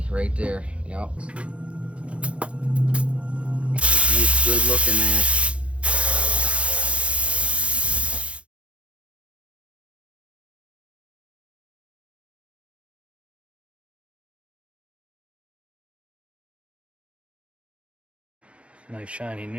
right there. Yep. Nice, good looking there. Nice shiny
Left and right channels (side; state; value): left; late; 0.061 ms